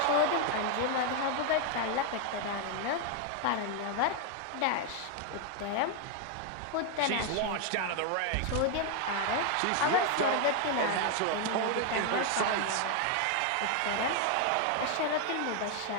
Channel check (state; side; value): different; both; correlation 0.01